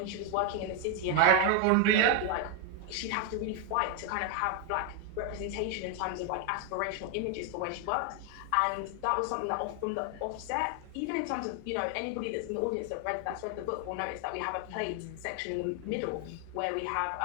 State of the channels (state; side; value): different; both; correlation 0.01